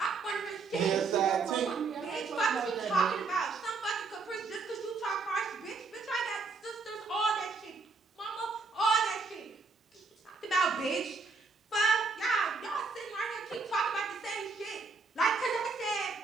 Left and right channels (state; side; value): quieter; left; 4.3 dB